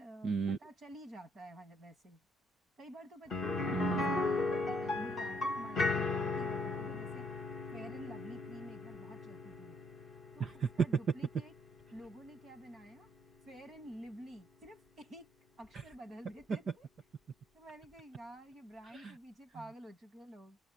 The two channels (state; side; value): normal; both; correlation 0.69